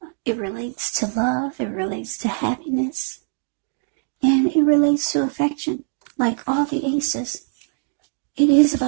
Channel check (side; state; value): left; silent; digital silence